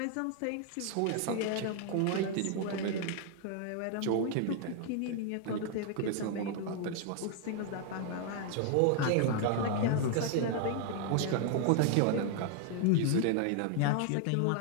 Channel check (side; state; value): both; different; correlation 0.00